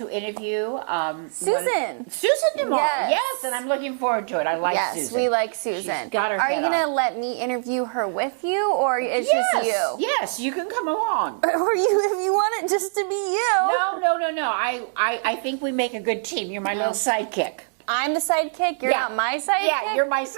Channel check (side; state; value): left; silent; digital silence